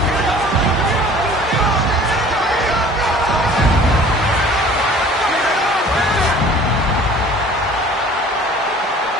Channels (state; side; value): normal; both; correlation 0.48